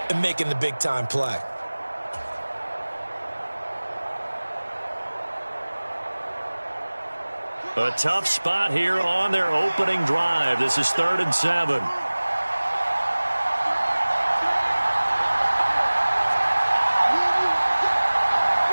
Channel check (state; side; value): inverted; both; correlation -1.00